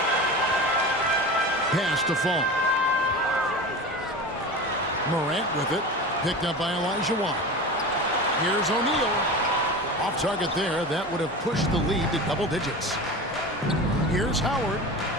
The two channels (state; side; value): normal; both; correlation 0.30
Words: Pass to Fall. Morant with it. Picked up by Olajuwon. Here's O'Neal. Off target there. That would have pushed the lead to double digits. Here's Howard.